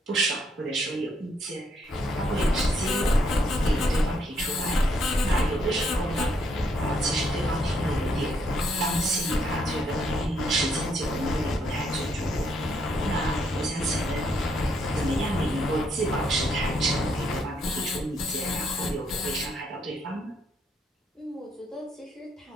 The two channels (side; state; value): both; normal; correlation 0.73